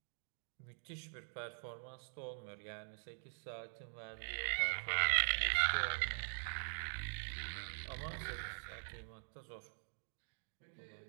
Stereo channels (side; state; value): left; silent; digital silence